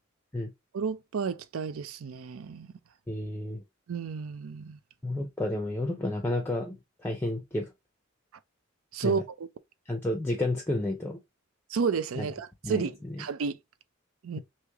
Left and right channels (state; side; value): normal; both; correlation 0.42